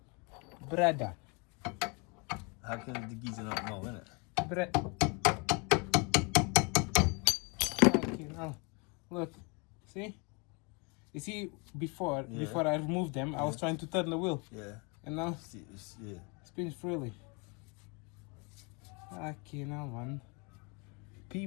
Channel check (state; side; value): quieter; right; 31.7 dB